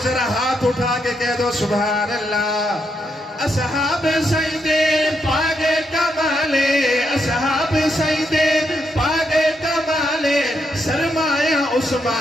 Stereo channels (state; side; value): normal; both; correlation 0.80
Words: ذرا ہاتھ اٹھا کے کہہ دو سبحان اللہ اصحاب سیدے پاک کمالے اصحاب سیدے پاک کمالے سرمایہ